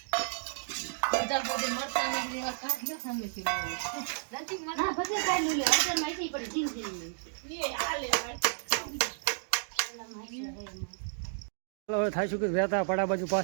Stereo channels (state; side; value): silent; left; digital silence